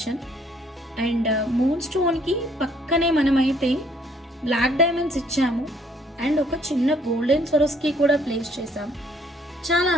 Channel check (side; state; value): both; normal; correlation 0.63